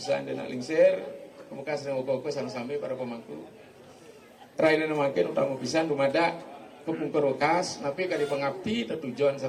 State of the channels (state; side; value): identical; both; correlation 1.00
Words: anda lingsir kemuka sedang uko-uko sampai para pemangku. Raina makin utang pisan dumada kepungkur wakas napi kali pengabdi tujuan